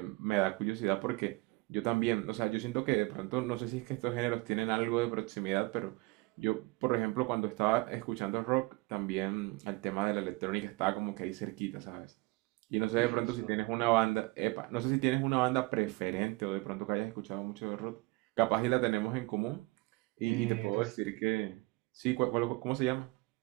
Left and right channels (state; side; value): quieter; left; 23.4 dB